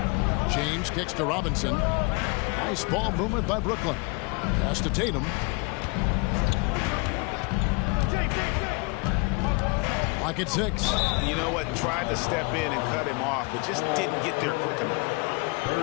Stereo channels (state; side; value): quieter; right; 29.4 dB